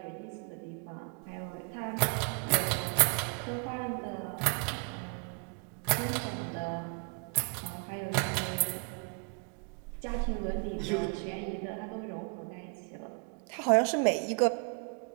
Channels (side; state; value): left; quieter; 33.0 dB